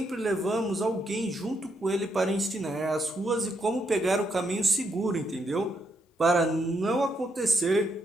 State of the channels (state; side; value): normal; both; correlation 0.77